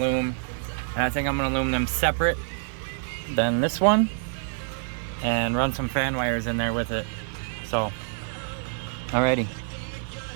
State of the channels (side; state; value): left; silent; digital silence